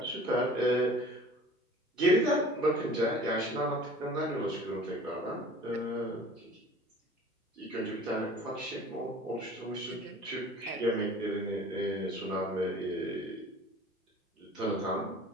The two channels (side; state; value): both; normal; correlation 0.45